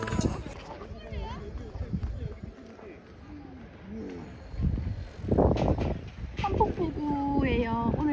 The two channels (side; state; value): both; identical; correlation 1.00